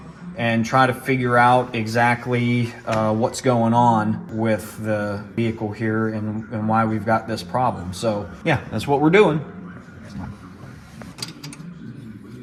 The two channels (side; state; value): both; identical; correlation 1.00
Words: and try to figure out exactly what's going on with the vehicle here and why we've got this problem. So yeah, that's what we're doing.